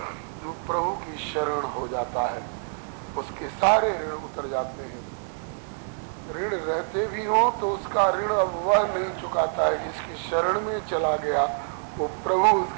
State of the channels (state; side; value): silent; left; 61 dB below the other